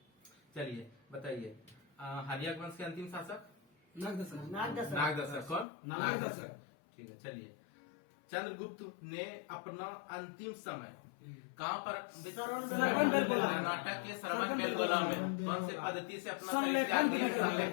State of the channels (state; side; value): drops out; right; at 5.7 s